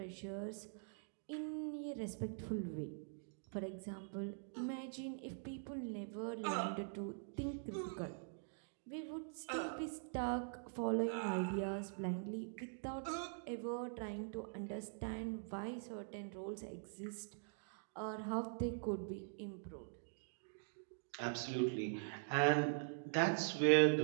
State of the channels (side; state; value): left; silent; digital silence